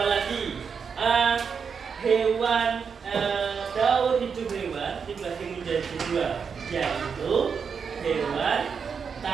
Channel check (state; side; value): quieter; left; 6.2 dB